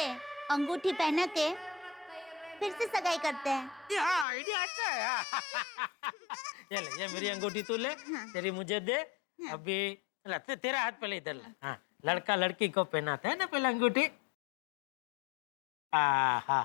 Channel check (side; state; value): right; drops out; at 4.2 s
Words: अंगूठी पहना के फिर से सगाई करते हैं। ये आइडिया अच्छा है। ये ले ये मेरी अंगूठी तू ले। तेरी मुझे दे। अभी तेरा हाथ पहले इधर ला। हाँ लड़का लड़की को पहनाता है ना पहले अंगूठी।